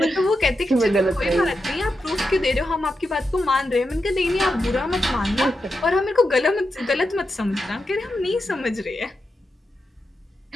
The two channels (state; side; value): normal; both; correlation 0.88